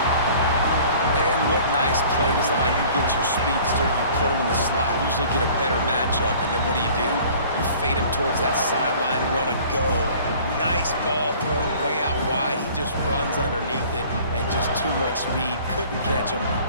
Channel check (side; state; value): both; inverted; correlation -0.50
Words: Play design, you get your speedster, you put him in the slot, you usually get a better matchup, and then what do? You fade him towards that sideline, run a go. Nice ball thrown way out wide. He just runs underneath it, and just too much speed. Couldn't catch him.